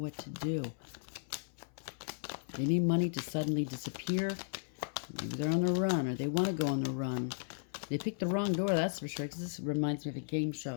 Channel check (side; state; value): right; silent; 54 dB below the other